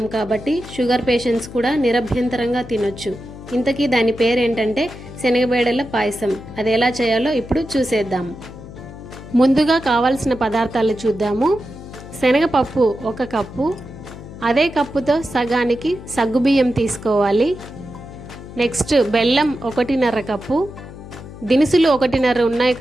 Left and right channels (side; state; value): left; noise; hum, 15 dB below the sound